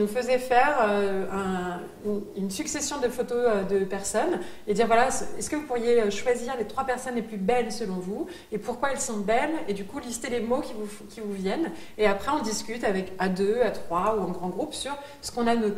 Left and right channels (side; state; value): both; identical; correlation 1.00